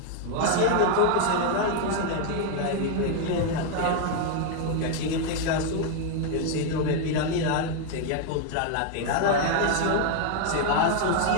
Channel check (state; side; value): different; both; correlation 0.00